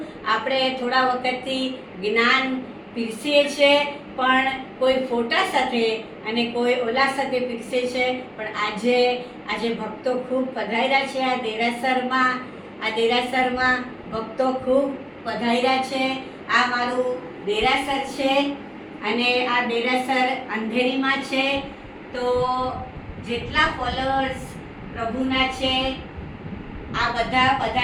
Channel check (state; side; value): identical; both; correlation 1.00